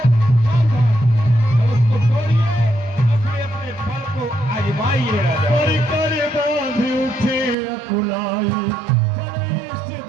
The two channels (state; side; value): drops out; left; at 7.6 s